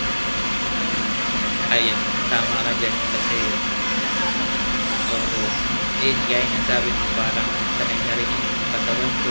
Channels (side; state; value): both; inverted; correlation -1.00